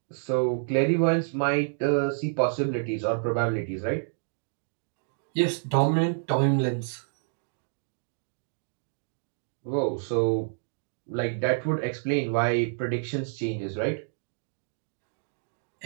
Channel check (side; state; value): left; silent; digital silence